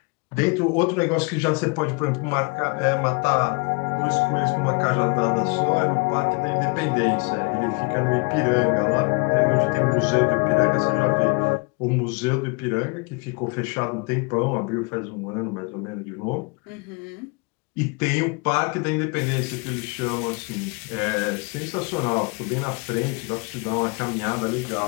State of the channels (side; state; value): right; quieter; 31.3 dB